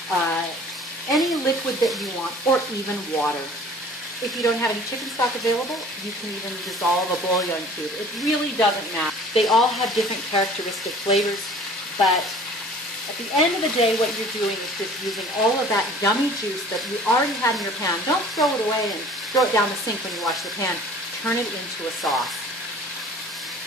any liquid that you want, or even water. If you don't have any chicken stock available, you can even dissolve a bouillon cube. It really doesn't matter. They all have different characteristic flavors, but at the end of the day, what you're doing is just using all of that yummy juice that you already had in your pan. Don't throw it away and throw it down the sink when you wash the pan. Turn it into a sauce.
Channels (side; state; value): both; normal; correlation 0.48